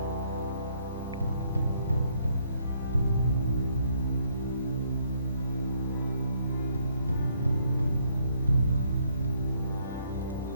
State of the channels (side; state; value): both; inverted; correlation -0.70